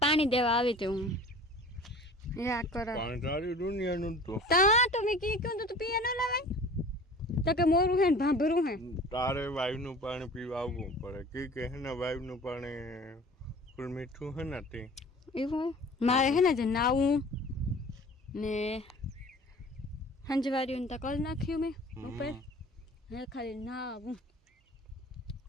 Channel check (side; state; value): both; normal; correlation 0.44